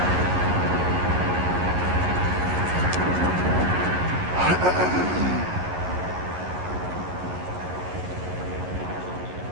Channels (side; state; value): left; late; 11 ms